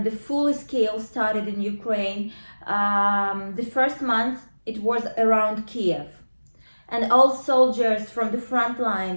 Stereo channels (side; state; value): both; inverted; correlation -1.00